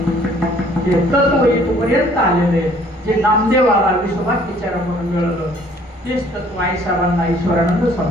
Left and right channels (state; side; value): normal; both; correlation 0.58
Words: ते तत्व इथपर्यंत आलेले, जे नामदेवाला विश्वभर विचारा म्हणून मिळालं, तेच तत्व आई साहेबांना ईश्वरानंद